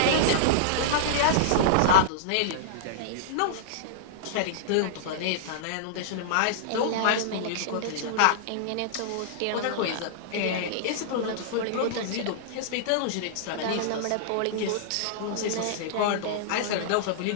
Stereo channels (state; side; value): different; both; correlation -0.02